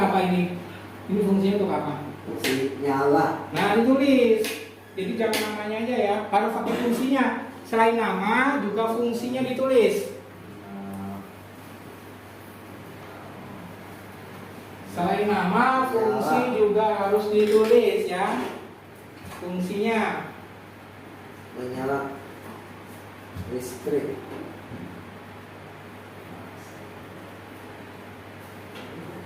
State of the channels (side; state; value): both; identical; correlation 1.00